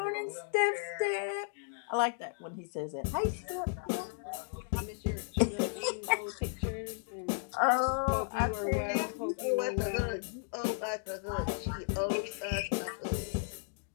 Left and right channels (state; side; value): silent; right; digital silence